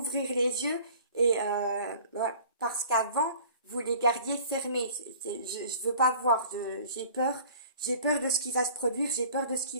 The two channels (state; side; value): inverted; both; correlation -0.48